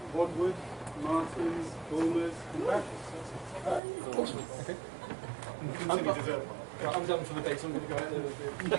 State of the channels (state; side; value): drops out; left; at 3.8 s